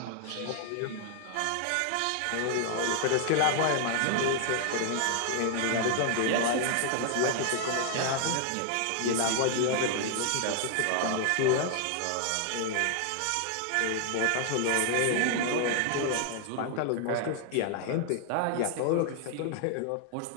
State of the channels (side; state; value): both; different; correlation 0.00